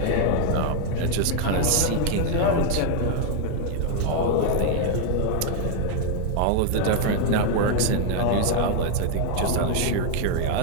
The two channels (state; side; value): different; both; correlation 0.00